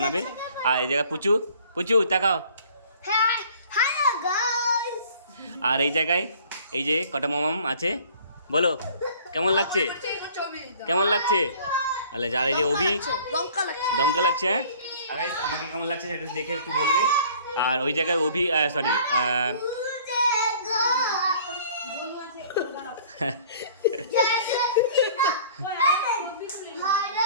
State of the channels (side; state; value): both; inverted; correlation -0.52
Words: আর এই জায়গায় পুচু পুচু তাকাও। আর এই জায়গায় এই যে কটা মামাম আছে, বলো কেমন লাগছে, কেমন লাগছে। আলে যার এই যে অভি, দমকা লাগছে। হ্যাঁ, আর আমাকে কেমন লাগছে সেটা দেখে একটু বলবে। আর ওই জায়গায় অভি, সরি